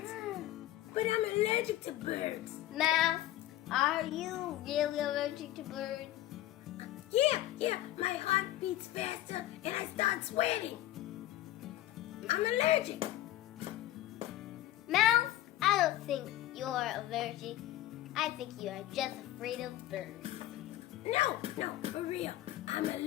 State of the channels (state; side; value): quieter; right; 14.5 dB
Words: But I'm allergic to birds. Mouse, are you really allergic to birds? Yeah, my heart beats faster and I start sweating. I'm allergic. Mouse, I don't think you're allergic. I think you are just afraid of birds. No, for real. I'm